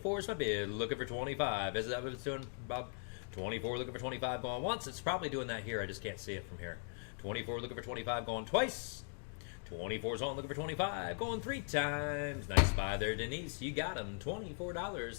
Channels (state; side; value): silent; right; 51 dB below the other